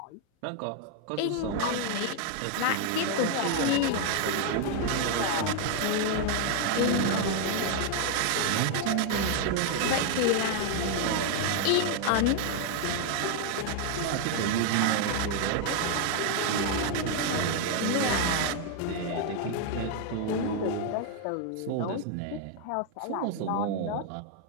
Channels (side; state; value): both; different; correlation 0.00